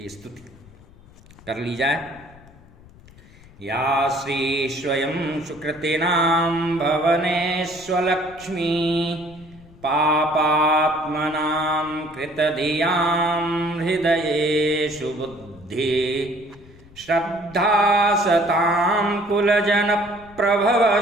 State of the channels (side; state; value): left; noise; rumble, 23 dB below the sound